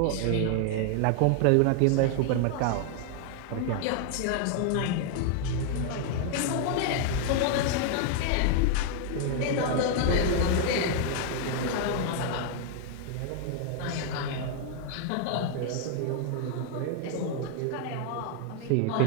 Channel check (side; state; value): both; different; correlation 0.00